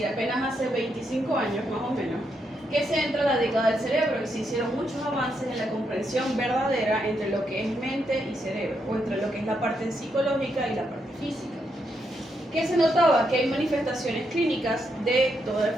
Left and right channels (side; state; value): both; normal; correlation 0.80